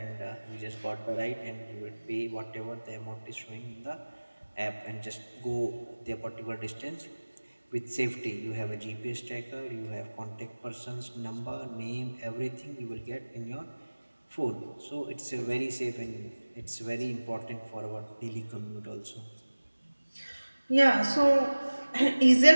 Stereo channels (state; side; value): inverted; both; correlation -1.00